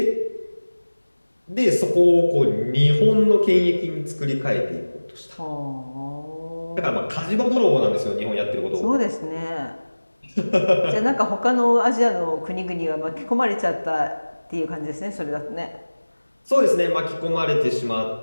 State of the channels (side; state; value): both; inverted; correlation -1.00